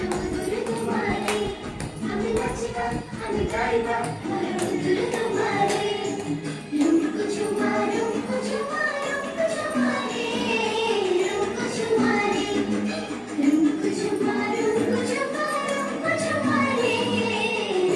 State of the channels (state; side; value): identical; both; correlation 1.00